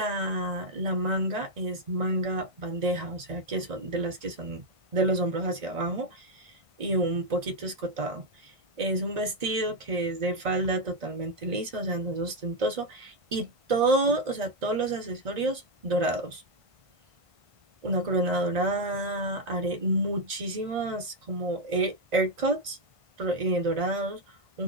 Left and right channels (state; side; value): late; left; 1.9 ms